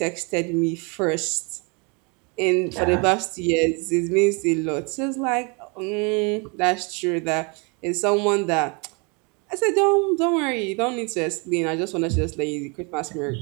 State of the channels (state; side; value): quieter; left; 32.2 dB